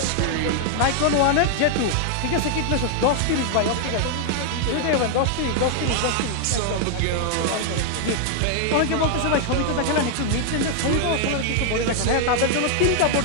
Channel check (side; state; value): both; different; correlation 0.00